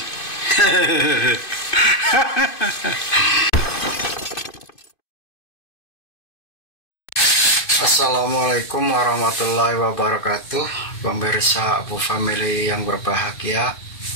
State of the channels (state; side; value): late; right; 2.5 ms